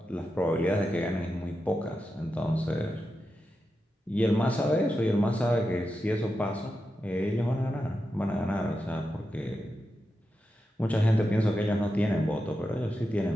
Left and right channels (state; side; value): normal; both; correlation 0.89